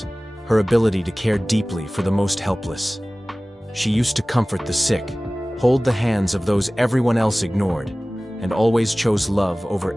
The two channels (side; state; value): both; normal; correlation 0.98